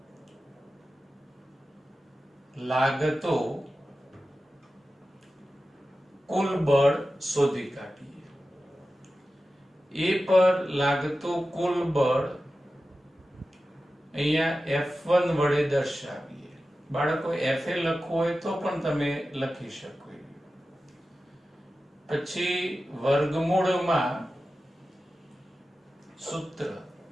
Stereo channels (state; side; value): normal; both; correlation 0.94